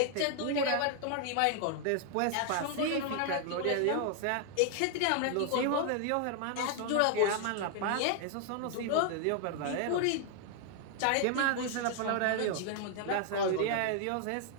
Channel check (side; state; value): both; different; correlation 0.00